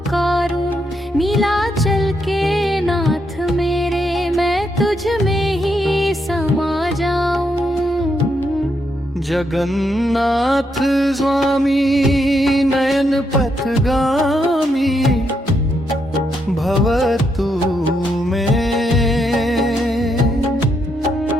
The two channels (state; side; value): normal; both; correlation 0.79